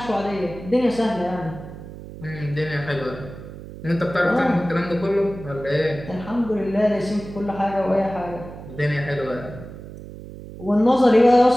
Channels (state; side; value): noise; right; hum, 14 dB below the sound